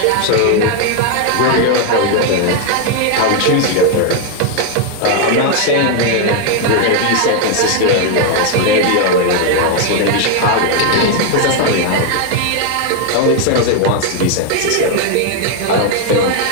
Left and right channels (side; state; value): both; different; correlation 0.01